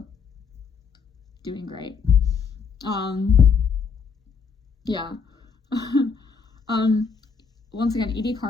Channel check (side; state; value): right; quieter; 5.6 dB